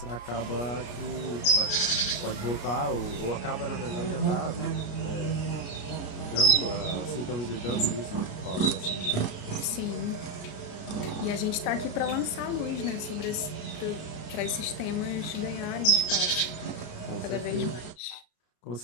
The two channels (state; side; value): late; right; 33 ms